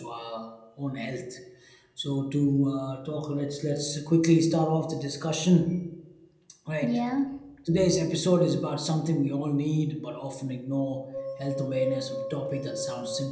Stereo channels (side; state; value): both; identical; correlation 1.00